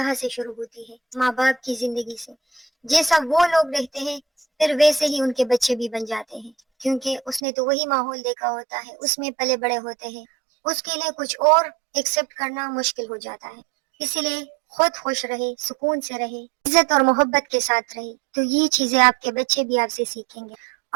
سے شروع ہوتی ہے، ماں باپ کی زندگی سے۔ جیسا وہ لوگ رہتے ہیں پھر ویسے ہی ان کے بچے بھی بن جاتے ہیں، کیونکہ اس نے تو وہی ماحول دیکھا ہوتا ہے، اس میں پلے بڑے ہوتے ہیں، اس کے لیے کچھ اور ایکسپٹ کرنا مشکل ہو جاتا ہے۔ اسی لیے خود خوش رہے، سکون سے رہے، عزت اور محبت کے ساتھ رہے، تو یہ چیزیں آپ کے بچے بھی آپ سے سیکھیں گے،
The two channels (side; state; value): left; drops out; at 7.4 s